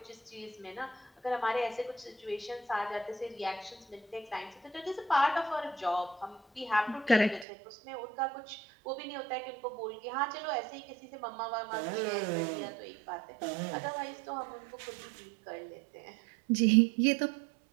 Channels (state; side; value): drops out; left; at 7.5 s